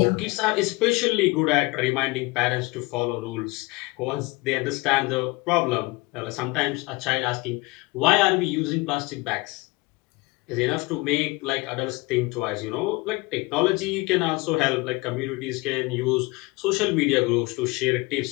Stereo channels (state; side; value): quieter; right; 23.9 dB